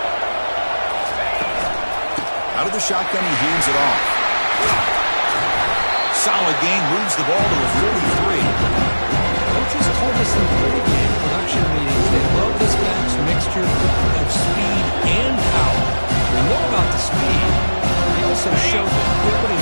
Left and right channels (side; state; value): both; inverted; correlation -1.00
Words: Out of the shotgun, he hands it off. Solid gain, moves the ball to a 43. Coaches told us in pregame production meetings they love this back's mixture of speed and power. We know about the speed. They also showed the